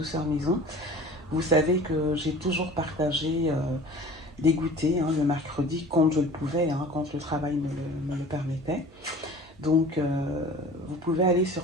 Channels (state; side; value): normal; both; correlation 0.43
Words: Maison, vous savez que j'ai toujours partagé des goûters le mercredi quand je le pouvais, quand le travail me le permettait. Donc vous pouvez aller sur